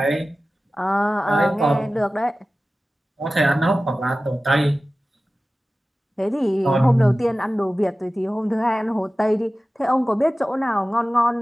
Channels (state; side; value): normal; both; correlation 0.96